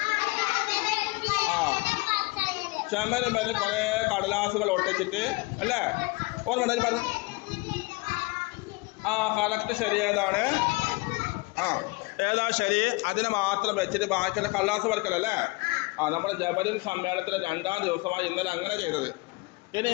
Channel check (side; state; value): right; quieter; 25.7 dB